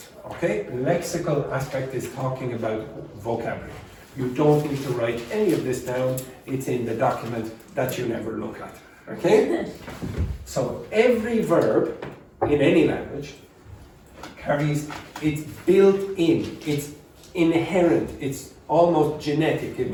okay? Lexical aspect is talking about vocabulary. You don't need to write any of this down, it's in the document that you never look at, okay? So every verb in any language carries, it's built in, it's inherent, it's almost genetic, it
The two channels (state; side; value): identical; both; correlation 1.00